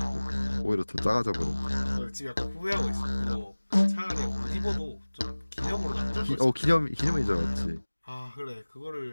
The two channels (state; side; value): inverted; both; correlation -1.00